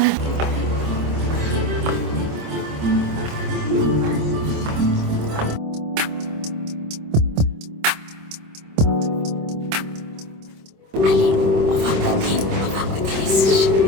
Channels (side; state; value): left; late; 26 ms